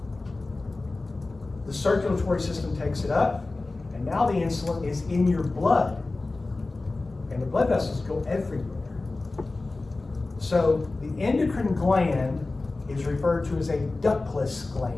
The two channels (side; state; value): right; quieter; 3.3 dB